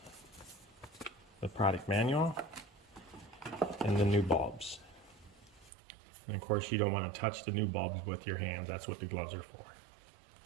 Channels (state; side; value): drops out; left; at 5.7 s